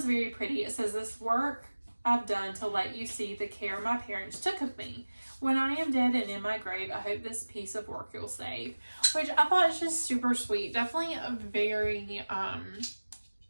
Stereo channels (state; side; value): inverted; both; correlation -1.00